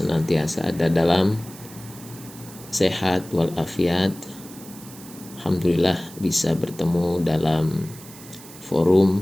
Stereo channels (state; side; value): noise; right; hiss, 18 dB below the sound